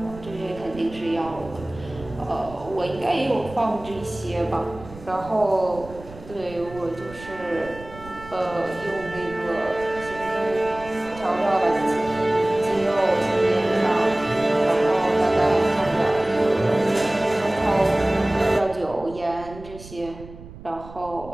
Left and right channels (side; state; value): right; noise; rumble, 17 dB below the sound